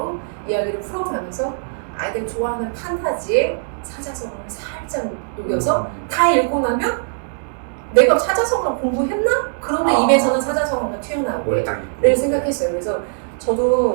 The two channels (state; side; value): silent; left; digital silence